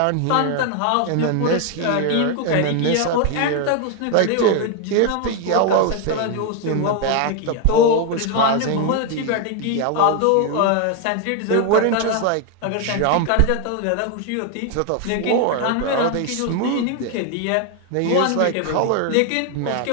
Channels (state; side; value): different; both; correlation 0.01